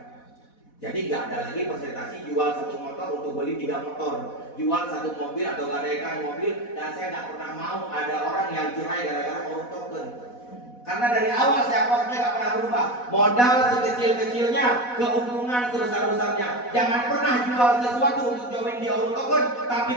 Jadi nggak ada lagi presentasi jual satu motor untuk beli 3 motor, jual satu mobil atau gadaikan mobil, dan saya nggak pernah mau ada orang yang cerai gara-gara orang token. Karena dari awal saya posnya nggak pernah berubah. Modal sekecil-kecilnya, keuntungan sebesar-besarnya. Jangan pernah jual sesuatu untuk join di Auto Token, tapi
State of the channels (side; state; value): right; late; 4.1 ms